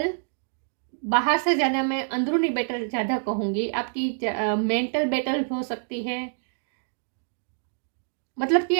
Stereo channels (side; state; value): left; silent; 61 dB below the other